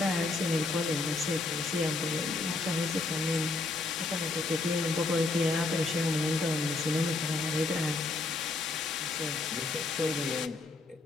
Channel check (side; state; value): right; quieter; 3.5 dB